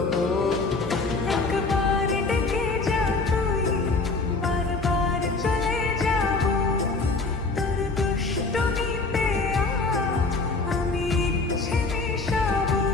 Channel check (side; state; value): right; quieter; 3.8 dB